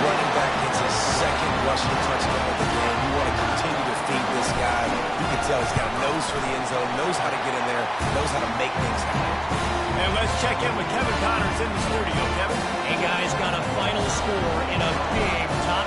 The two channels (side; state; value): both; identical; correlation 1.00